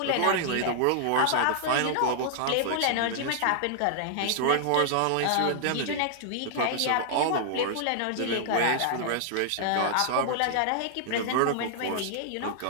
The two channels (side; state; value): both; different; correlation -0.01